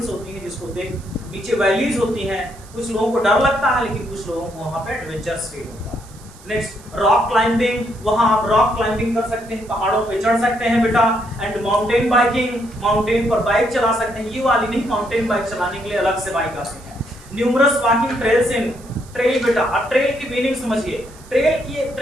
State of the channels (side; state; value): right; noise; hiss, 23 dB below the sound